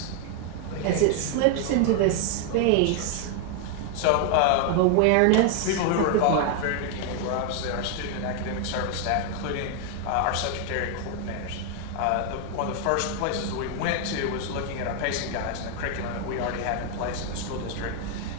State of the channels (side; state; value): both; different; correlation 0.00